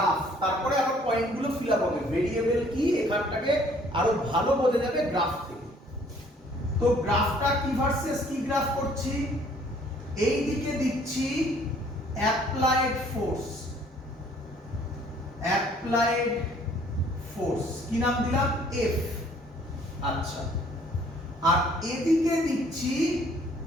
তারপরে আবার পয়েন্টগুলো ফিল আপ হবে। ভেরিয়েবল কি এখানটাকে আরো ভালো বোঝা যাবে গ্রাফ থেকে। তো গ্রাফটা কি ভার্সেস কি গ্রাফ করছি? এই দিকে দিচ্ছি অ্যাপ্লাইড ফোর্স, অ্যাপ্লাইড ফোর্স কি নাম দিলাম? এফ। আচ্ছা, আর এদিকে দিচ্ছি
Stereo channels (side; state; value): both; normal; correlation 0.59